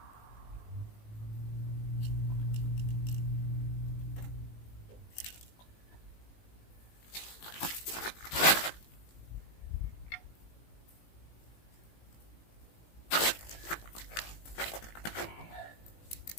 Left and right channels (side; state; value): right; late; 18 ms